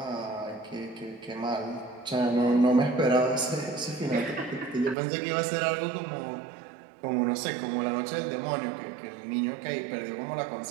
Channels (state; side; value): drops out; left; at 5.0 s